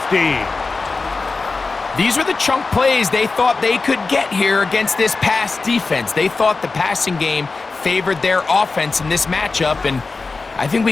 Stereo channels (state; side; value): quieter; right; 4.0 dB